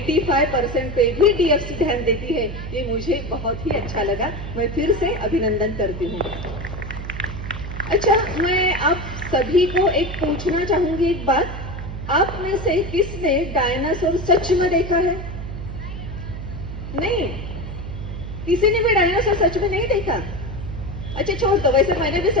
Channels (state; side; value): noise; right; hum, 8 dB below the sound